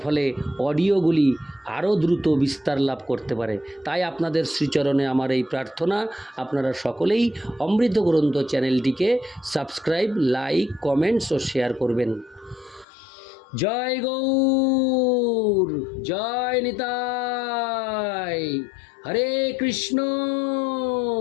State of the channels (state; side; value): drops out; right; at 12.9 s